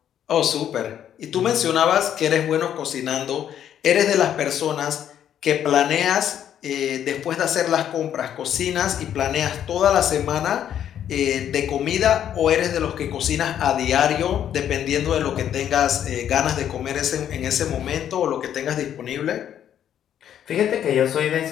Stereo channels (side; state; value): right; quieter; 10.0 dB